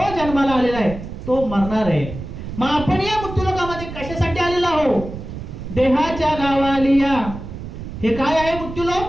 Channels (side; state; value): right; noise; rumble, 10 dB below the sound